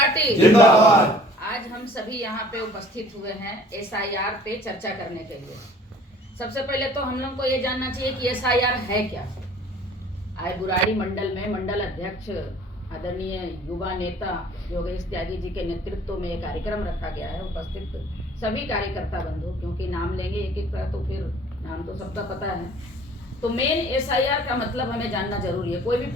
जिंदाबाद। आज हम सभी यहाँ पे उपस्थित हुए हैं एसआईआर पे चर्चा करने के लिए। सबसे पहले तो हम लोग को ये जानना चाहिए कि एसआईआर है क्या। आज बुराड़ी मंडल में मंडल अध्यक्ष आदरणीय युवा नेता योगेश त्यागी जी के नेतृत्व में एक कार्यक्रम रखा गया है। उपस्थित सभी कार्यकर्ता बंधु, क्योंकि नाम लेंगे एक एक का तो फिर नाम तो सबका पता है। तो मेन एसआईआर का मतलब हमें जानना जरूरी है। कोई भी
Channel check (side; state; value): both; normal; correlation 0.52